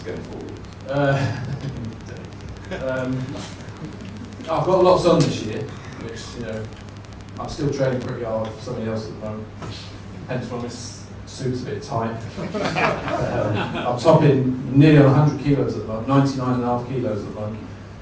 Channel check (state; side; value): identical; both; correlation 1.00